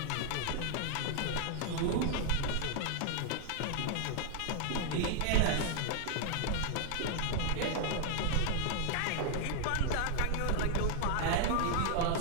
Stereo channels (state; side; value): different; both; correlation 0.00